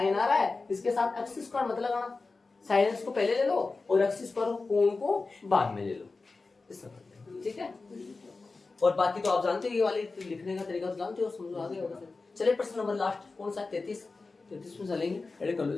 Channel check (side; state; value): right; quieter; 3.8 dB